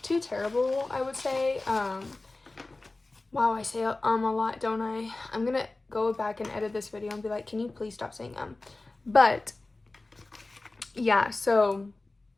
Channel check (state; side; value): quieter; right; 3.1 dB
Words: I would say. Wow, I say a lot, don't I? I'm gonna go back and edit this video and be like, can you please stop saying But yeah, so